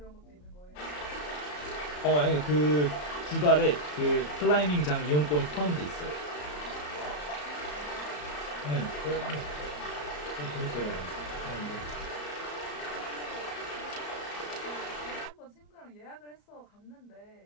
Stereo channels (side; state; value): right; late; 34 ms